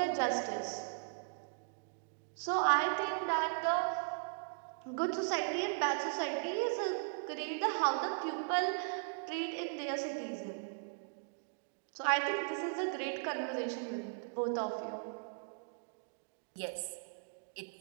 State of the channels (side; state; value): left; silent; digital silence